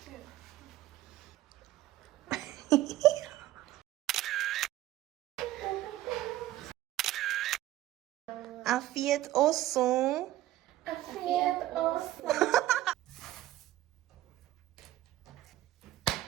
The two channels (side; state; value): left; quieter; 15.0 dB